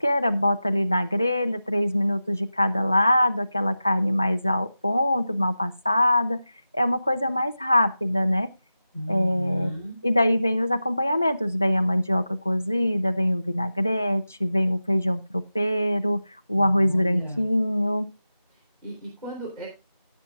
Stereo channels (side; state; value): both; inverted; correlation -0.93